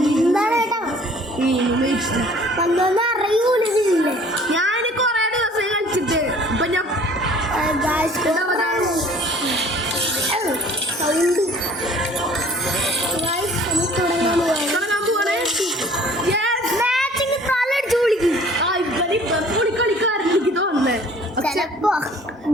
കേട്ടോ വന്നൊന്നും അറിയൂലില്ലേ. ഞാൻ കുറേ ദിവസമായി കളിച്ചിട്ട്. ഇപ്പൊ ഞാൻ സൗണ്ട് തുടങ്ങാൻ പോവാണ്. മാച്ചിങ് തലടിച്ചു വിളിക്കും. കളിക്കാരൻ എനിക്ക് തോന്നുന്നേ. ചിലപ്പോ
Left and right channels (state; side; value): normal; both; correlation 0.52